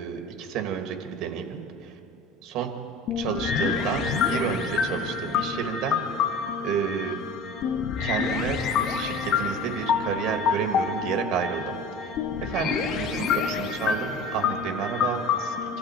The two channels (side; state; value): both; normal; correlation 0.38